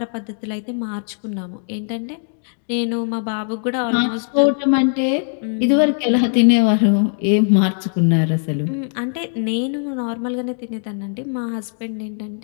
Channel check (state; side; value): silent; right; digital silence